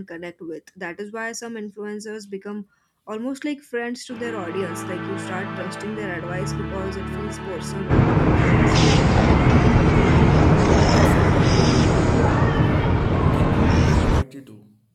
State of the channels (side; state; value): both; identical; correlation 1.00